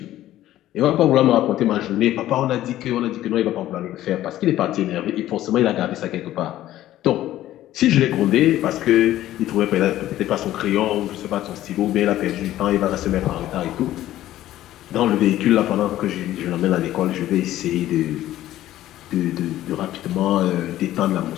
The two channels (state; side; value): quieter; right; 13.9 dB